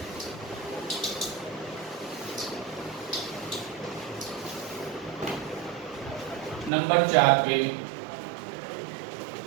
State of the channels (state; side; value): drops out; left; at 6.7 s